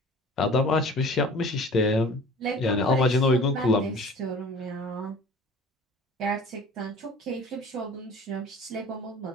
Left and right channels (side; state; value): both; normal; correlation 0.44